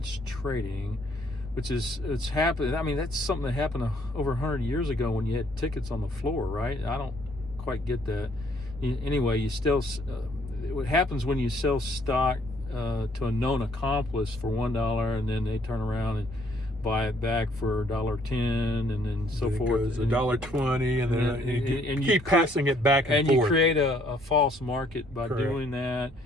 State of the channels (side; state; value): both; normal; correlation 0.64